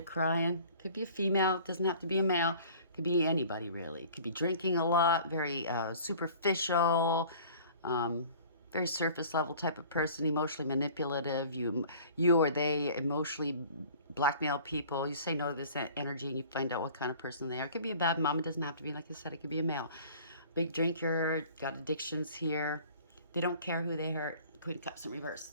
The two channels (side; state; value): both; inverted; correlation -0.48